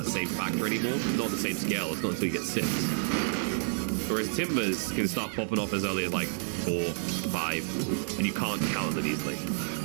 same factor anymore. Not on the same scale. It's not until you get 6. Whereas Timbers can start popping off as early as, like, 4, 5. And you can't count them easily.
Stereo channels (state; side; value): silent; left; 58 dB below the other